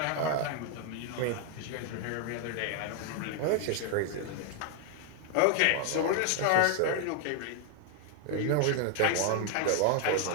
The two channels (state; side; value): different; both; correlation 0.00